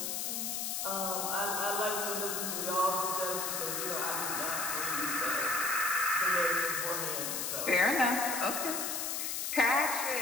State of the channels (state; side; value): noise; left; hiss, 1 dB below the sound